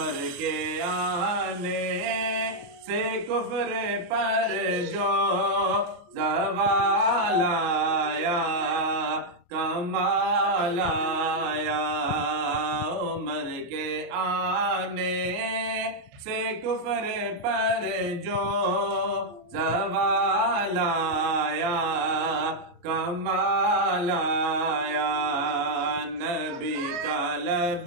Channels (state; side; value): late; left; 29 ms